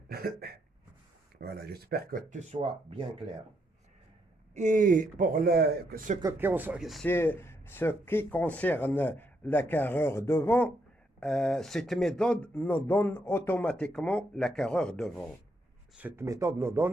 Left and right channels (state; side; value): normal; both; correlation 0.77